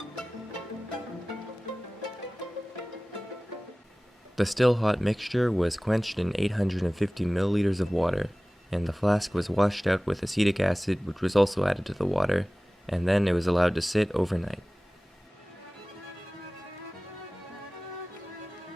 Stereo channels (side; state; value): both; normal; correlation 0.98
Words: The still hot mixture was quenched in 850 milliliters of water, and the flask was washed out with acetic acid, which was also added to the water, and then it was allowed to sit overnight.